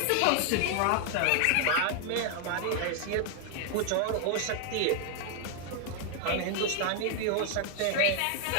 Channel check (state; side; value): different; both; correlation 0.00